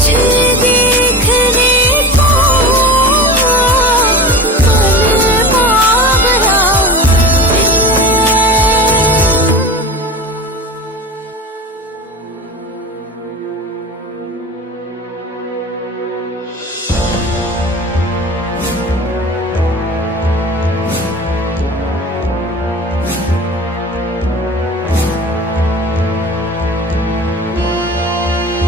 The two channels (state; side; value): normal; both; correlation 0.31